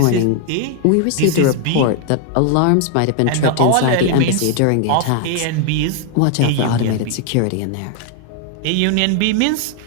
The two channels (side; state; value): both; different; correlation 0.00